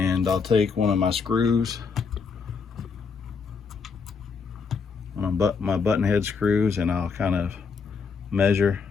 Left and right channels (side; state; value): right; quieter; 5.3 dB